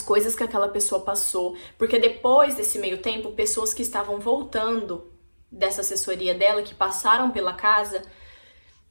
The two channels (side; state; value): both; inverted; correlation -1.00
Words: que aquela pessoa passou. Porque depois desse meio tempo, pessoas que estavam voltando dessa assessoria dela, que passaram pela casa,